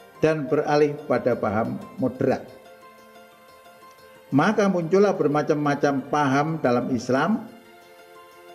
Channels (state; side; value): identical; both; correlation 1.00